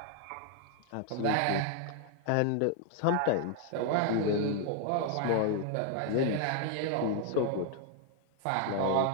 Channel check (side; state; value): both; different; correlation 0.00